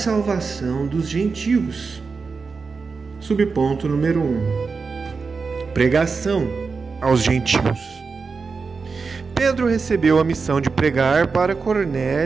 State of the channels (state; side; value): quieter; left; 4.8 dB